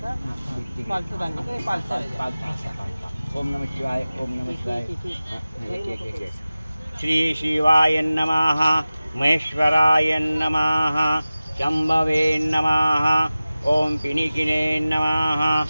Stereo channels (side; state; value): both; inverted; correlation -0.97